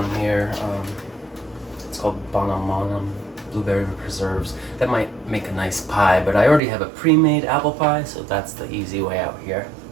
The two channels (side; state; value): left; drops out; at 6.6 s